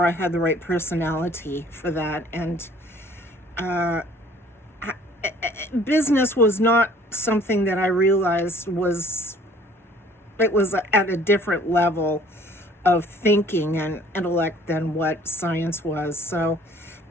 I had the right personality for that. And business was not something that I realized was at a different level of thinking and intellect than what science was. So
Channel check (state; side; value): normal; both; correlation 0.55